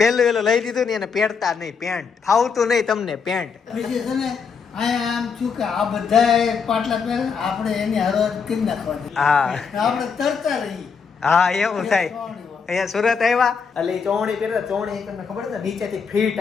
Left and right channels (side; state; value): right; quieter; 5.8 dB